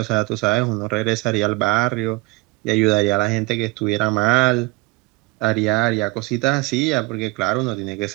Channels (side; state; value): left; quieter; 23.5 dB